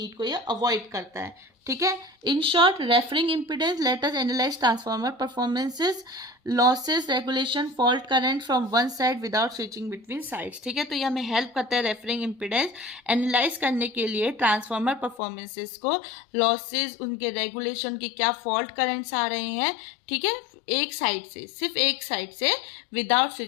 को ये अवॉइड करता है. ठीक है. In short, referring impedance, let us analyse transformer performances, losses, regulation, fault current from one side without switching between sides. ठीक है. तो ये हमें हेल्प करता है रेफरिंग इम्पीडेंस एनालाइज करने के लिए, ट्रांसफार्मर परफॉर्मेंसेस को, लॉसेस, उनके रेगुलेशन की क्या फॉल्ट करंट्स आ रहे हैं. ठीक है. एक साइड से, सिर्फ एक साइड से, विदाउट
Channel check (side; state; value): right; drops out; at 15.2 s